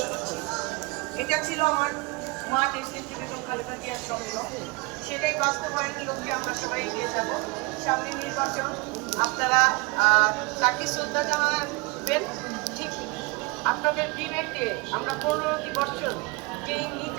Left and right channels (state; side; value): quieter; left; 26.6 dB